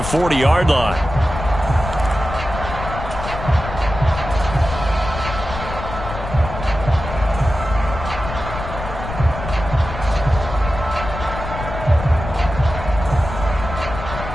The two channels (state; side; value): noise; left; rumble, 8 dB below the sound